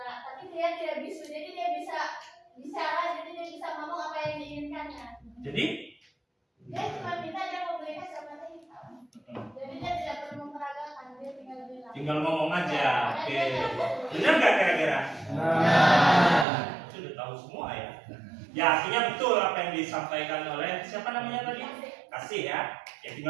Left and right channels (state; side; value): drops out; left; at 16.4 s